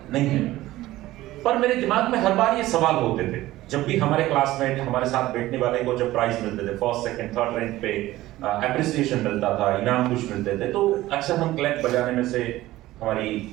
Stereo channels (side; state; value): left; quieter; 16.5 dB